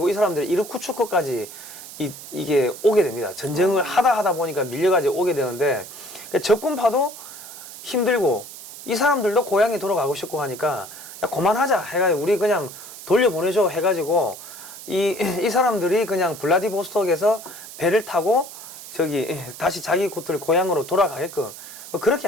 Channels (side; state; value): right; noise; hiss, 14 dB below the sound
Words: 이 사람들이 이르쿠츠크까지 이게 오게 됩니다. 전쟁을 하다 보니까 밀려가지고 오게 되는데 적군파도 힘들고 이 사람들도 고향에 돌아가고 싶고 하니까 야, 그만하자 해가지고 우리 그냥 돌려보내줘 해가지고 이 사람들이 그냥 블라디보스톡에서 배를 타고 저기 다시 자기 곳들 고향으로 돌아가게끔 그렇게